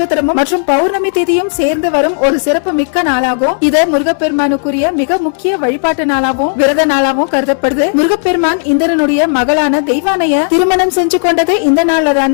மற்றும் பௌர்ணமி தேதியும் சேர்ந்து வரும் ஒரு சிறப்பு மிக்க நாளாகும். இது முருகப்பெருமானுக்குரிய மிக முக்கிய வழிபாட்டு நாளாகவும் விரத நாளாகவும் கருதப்படுது. முருகப்பெருமான் இந்திரனுடைய மகளான தெய்வானைய திருமணம் செஞ்சு கொண்டது இந்த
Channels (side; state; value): right; silent; digital silence